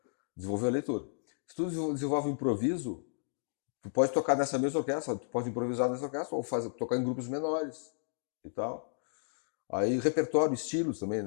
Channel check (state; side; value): silent; right; digital silence